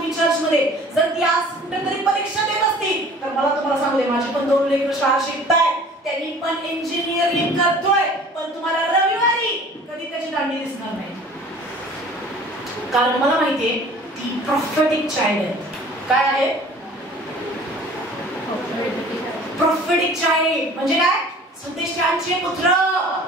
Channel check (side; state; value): both; normal; correlation 0.47